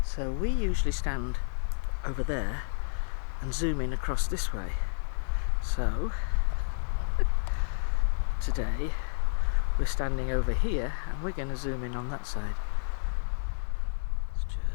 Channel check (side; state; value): right; silent; digital silence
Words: So we usually stand over there and zoom in across this way. So today we're standing over here and we're going to zoom in on that side. Let's